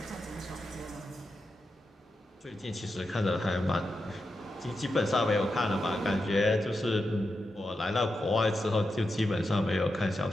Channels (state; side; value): normal; both; correlation 0.88